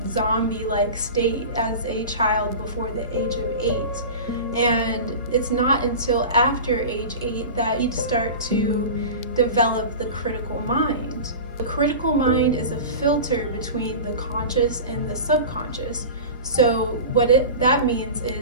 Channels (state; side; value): inverted; both; correlation -0.31